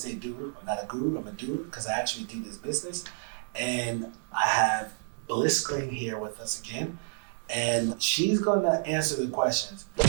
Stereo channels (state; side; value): silent; left; digital silence